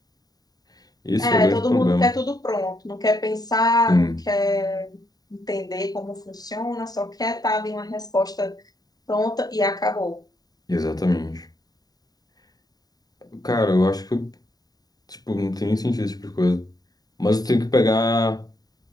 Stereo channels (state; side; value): late; right; 0.18 ms